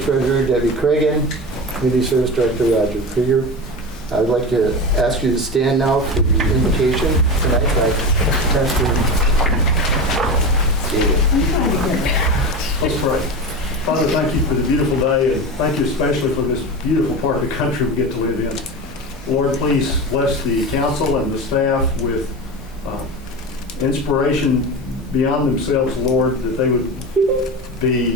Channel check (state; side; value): normal; both; correlation 0.25